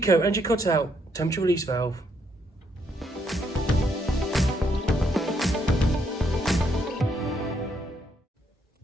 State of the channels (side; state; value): both; normal; correlation 0.74